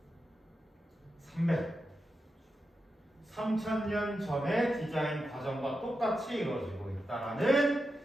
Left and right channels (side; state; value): both; normal; correlation 0.89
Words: 300 3,000년 전의 디자인 과정과 똑같이 이루어지고 있다라는